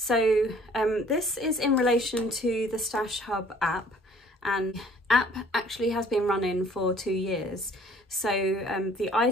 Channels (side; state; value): both; normal; correlation 0.55